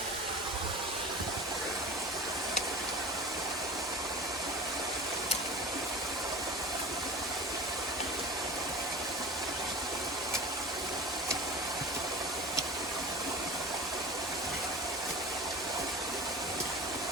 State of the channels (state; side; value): normal; both; correlation 0.34